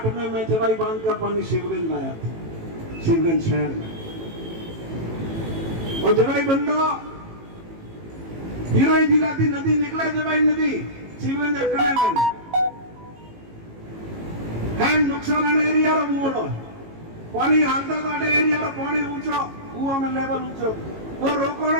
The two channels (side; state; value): left; late; 18 ms